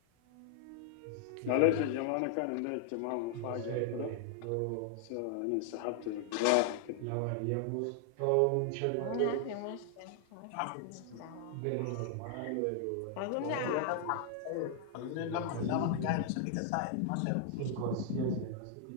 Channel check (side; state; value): both; different; correlation 0.00